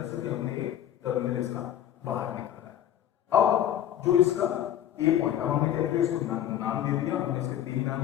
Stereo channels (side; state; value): right; quieter; 11.0 dB